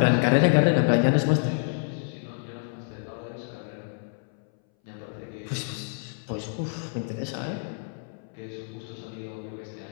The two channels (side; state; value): right; silent; 60 dB below the other